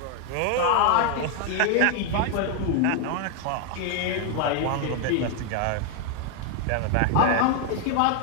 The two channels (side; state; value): both; different; correlation 0.00